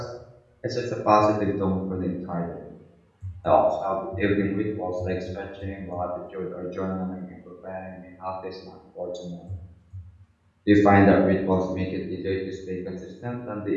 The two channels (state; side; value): identical; both; correlation 1.00